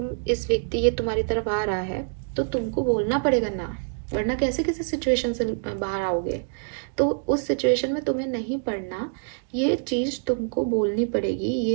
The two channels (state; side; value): silent; left; digital silence